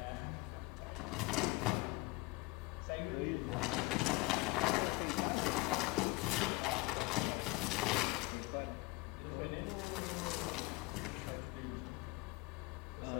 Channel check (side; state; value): right; quieter; 22.6 dB